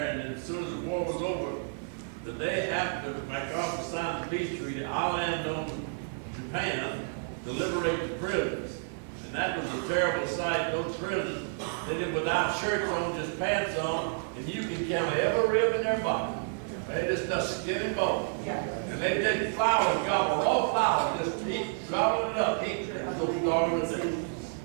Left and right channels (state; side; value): silent; left; digital silence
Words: and as soon as the war was over, the day after MacArthur signed the peace treaty, I landed on Japan to liberate the prisoners. And that was a terrible sight. Those prisoners, they did without shirts on, just pants on, and you can count every rib in their body. They just skin and bone. And they did flowers, gobble, raw flowers, just eat, gobble it up, eat. So starving to death.